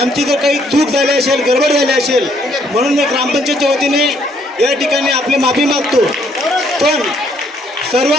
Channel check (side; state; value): both; normal; correlation 0.68